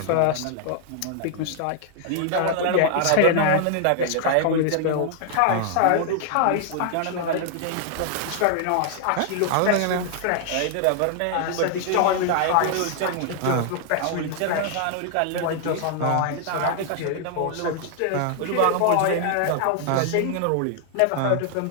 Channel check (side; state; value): both; different; correlation 0.00